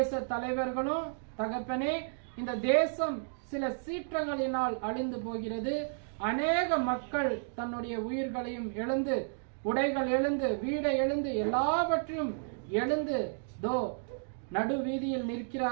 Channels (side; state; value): left; silent; digital silence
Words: தலைவர்களும் தகப்பனே, இந்த தேசம் சில சீற்றங்களினால் அழிந்து போகிறது. அநேக மக்கள் தன்னுடைய உயிர்களையும் எழுந்து, உடைகள் எழுந்து, வீடை எழுந்து, எல்லாவற்றையும் எழுந்து நடு வீதியில்